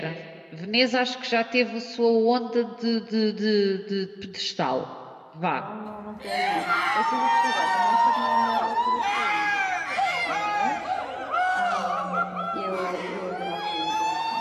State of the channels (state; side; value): identical; both; correlation 1.00